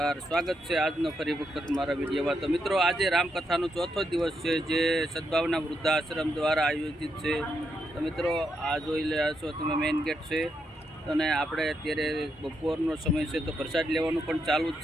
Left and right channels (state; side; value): normal; both; correlation 0.81